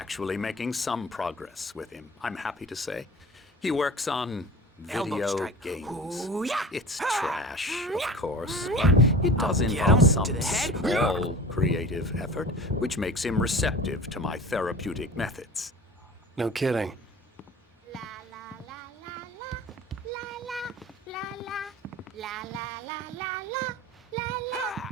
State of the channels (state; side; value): normal; both; correlation 0.38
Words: making some progress with him, I'm happy to say. He works on Elbow video strike. games. Ooh, yeah. It's trash, of course, but it does I'll get involve him some to the head. small creative effort, which makes him receptive to my therapeutic methods. No kidding.